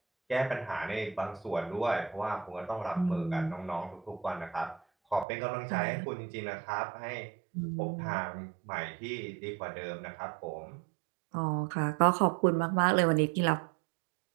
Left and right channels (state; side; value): drops out; left; at 5.2 s